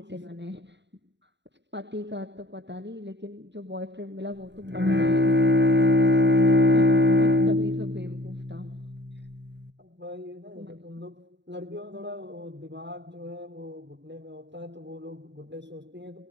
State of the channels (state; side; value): late; left; 0.52 ms